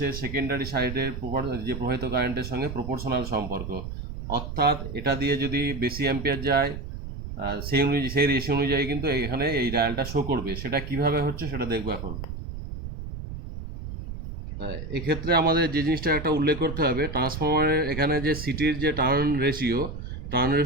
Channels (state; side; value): noise; right; rumble, 8 dB below the sound